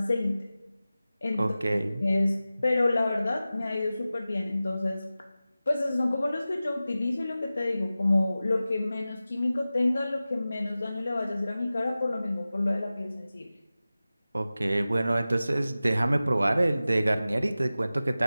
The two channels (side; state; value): both; inverted; correlation -0.95